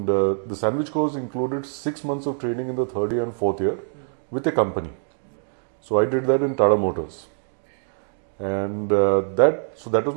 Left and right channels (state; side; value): silent; left; digital silence